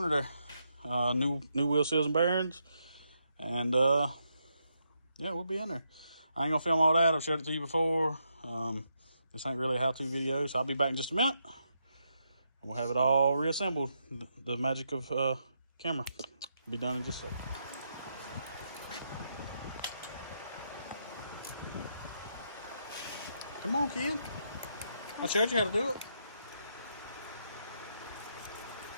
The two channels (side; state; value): both; inverted; correlation -0.80